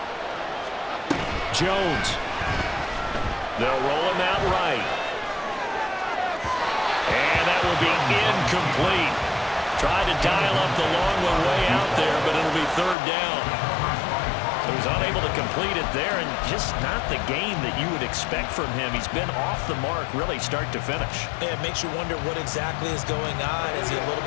Jones. They'll roll him out right. And that will be incomplete. Tried to dial up the long one way out there, but it'll be 3rd down. So he's unable to complete it there, and just not the game that you would expect from him. He's been off the mark really start to finish. Yeah, it makes you wonder what exactly is going on. Is he a little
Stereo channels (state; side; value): drops out; right; at 13.0 s